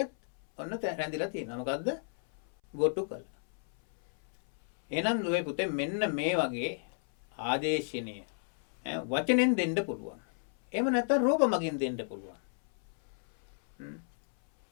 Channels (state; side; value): silent; right; 56 dB below the other